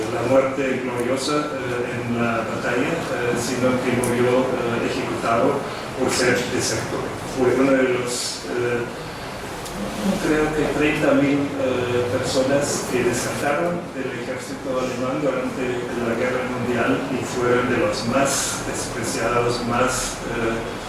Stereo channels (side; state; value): both; identical; correlation 1.00